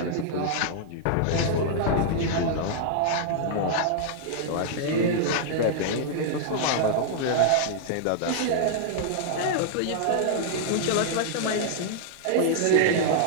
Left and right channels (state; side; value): different; both; correlation -0.01